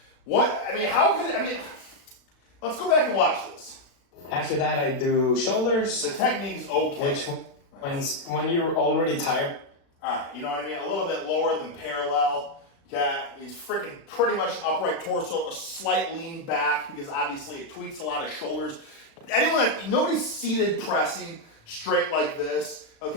Let's go back and watch this. After that, I do shoulders. The technique is okay. Which when you're already tired. All right, you know what I mean? A little bit lower than parallel. Okay, he's freaking pretty much upright torso, a slight lean back because obviously it tweaks a lot of shoulders. Nobody's seated pressing straight like this,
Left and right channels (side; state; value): right; late; 36 ms